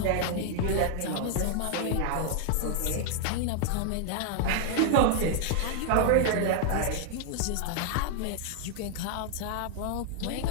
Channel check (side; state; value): both; different; correlation 0.00